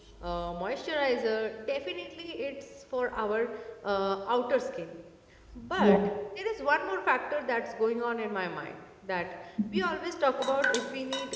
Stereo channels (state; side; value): identical; both; correlation 1.00